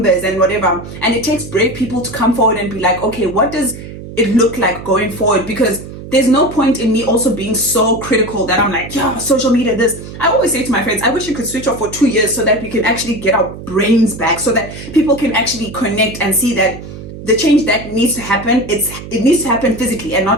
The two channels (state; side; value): noise; right; hum, 12 dB below the sound